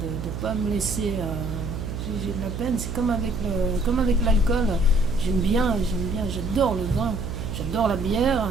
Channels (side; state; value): right; noise; hum, 6 dB below the sound